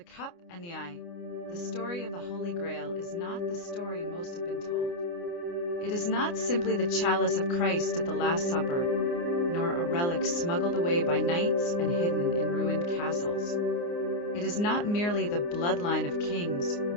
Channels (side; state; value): right; late; 29 ms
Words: Cup and the Eye. The story of the Holy Grail is not the story most have been told. It is not simply the chalice of Christ at the Last Supper, nor a relic smuggled away by knights and hidden in ruined castles. It is not merely the bloodline of kings